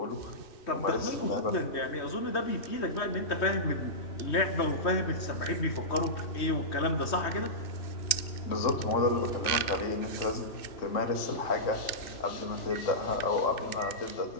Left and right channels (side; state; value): right; late; 2.6 ms